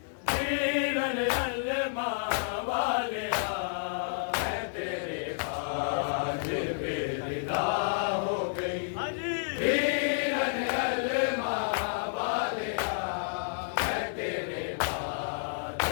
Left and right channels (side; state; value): right; silent; digital silence